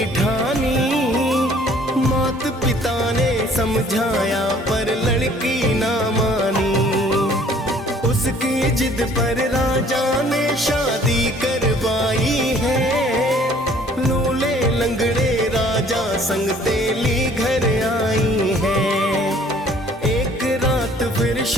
ठानी, माता पिता ने समझाया पर लड़की ना मानी। उसकी जिद पर राजा ने शादी करवाई है, लूले लंगड़े राजा संग तेली घर आई है। एक रात फिर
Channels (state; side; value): normal; both; correlation 0.56